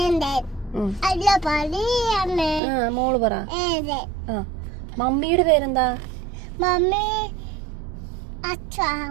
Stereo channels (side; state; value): left; drops out; at 2.6 s